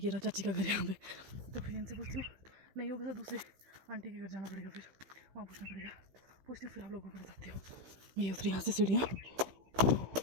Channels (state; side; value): late; left; 16 ms